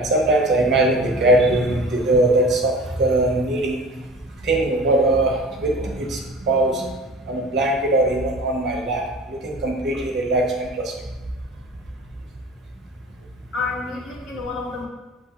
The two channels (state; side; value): normal; both; correlation 0.39